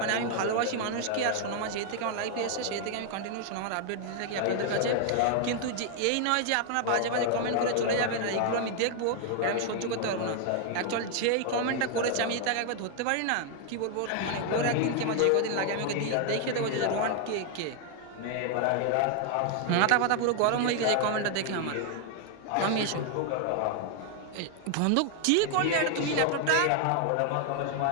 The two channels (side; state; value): both; different; correlation 0.00